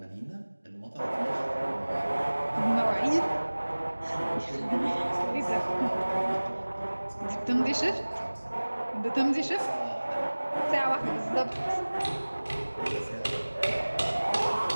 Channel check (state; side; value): inverted; both; correlation -1.00